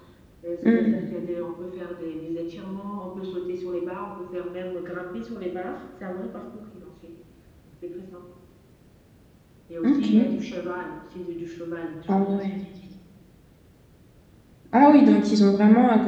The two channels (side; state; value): both; identical; correlation 1.00